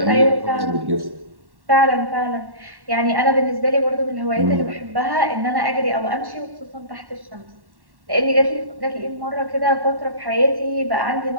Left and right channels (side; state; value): left; late; 1.1 ms